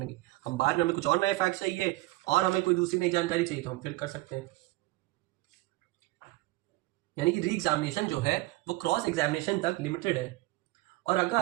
हम बाद में हमें कुछ और नए फैक्ट चाहिए और हमें कोई दूसरी नई जानकारी चाहिए तो हम फिर कर सकते हैं। यानी कि री एग्जामिनेशन जो है वो क्रॉस एग्जामिनेशन तक लिमिटेड है, और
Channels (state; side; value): quieter; left; 19.9 dB